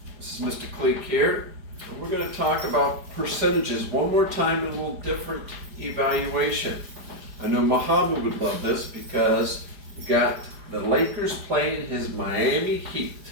This is Mr. Cleek here, and we're going to talk about percentages one more time in a little different evaluation. I know Muhammad would love this because you got the Lakers playing his Miami Heat.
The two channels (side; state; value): left; late; 4.9 ms